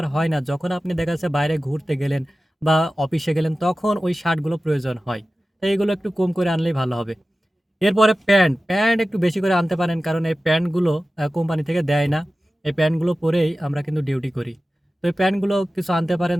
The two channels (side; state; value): both; normal; correlation 0.95